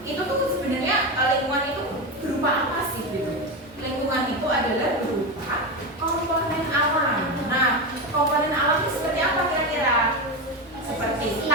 Itu tuh sebenarnya lingkungan itu berupa apa sih gitu? adalah berupa komponen alam. Nah, komponen alam itu seperti apa kira-kira? Seperti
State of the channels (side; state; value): both; normal; correlation 0.16